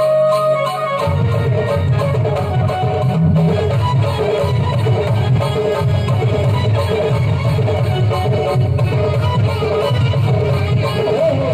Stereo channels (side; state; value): both; identical; correlation 1.00